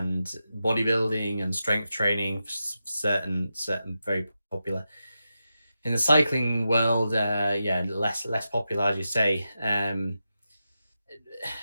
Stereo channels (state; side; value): inverted; both; correlation -0.90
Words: bodybuilding and strength training, certain very popular. In the cycling world, yeah, less popular, as you say. I